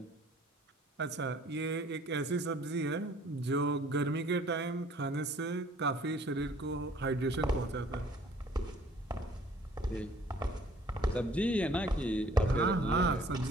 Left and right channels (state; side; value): normal; both; correlation 0.55